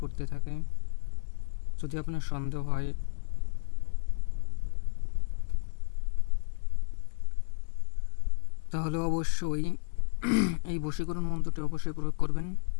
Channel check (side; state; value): right; silent; 57 dB below the other